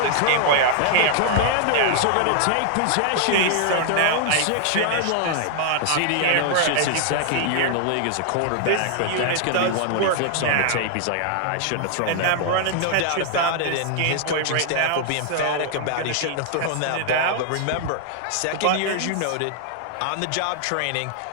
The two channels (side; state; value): both; different; correlation 0.00